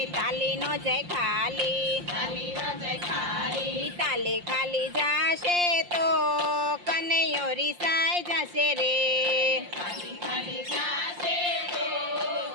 તાલી નો જય ખાલી તાલી નો જય ખાલી. તાલી ખાલી જાશે તો કનૈયો રિસાઈ જશે રે. ખાલી ખાલી જાશે તો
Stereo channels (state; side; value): late; left; 5.7 ms